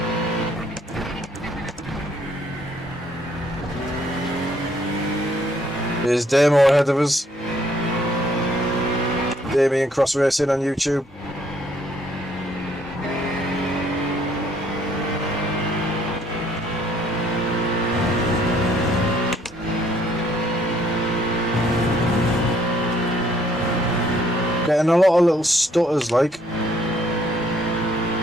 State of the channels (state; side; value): normal; both; correlation 0.65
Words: There's Damo ahead of us. Damien Cross Racing on YouTube. Getting a lot of little stutters like.